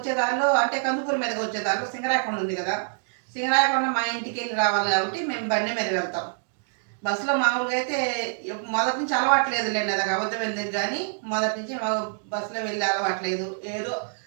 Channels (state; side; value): silent; left; digital silence